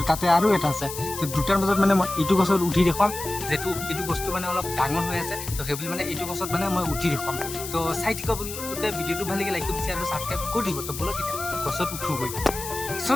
তাতে আৰু এটা আছে, তো দুটাৰ মাজত মানে মই এইটো গছত উঠি দেখুৱাম, যিহেতু এইটো বস্তু মানে অলপ ডাঙৰ হৈ আছে। তো সেইবুলি মানে এইটো গছত মানে মই উঠি দেখুৱাম। তো চাই থাকিব আপোনালোকে, ভিডিঅ'টো ভাল লাগে লাইক কৰি আৰু ছাবস্ক্ৰাইব কৰি দিব। তো বলক এতিয়া গছত উঠোগৈ। চ'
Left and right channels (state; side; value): noise; left; hiss, 9 dB below the sound